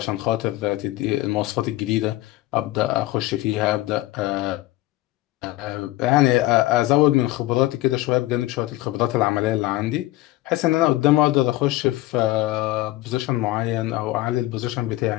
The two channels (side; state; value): right; quieter; 17.5 dB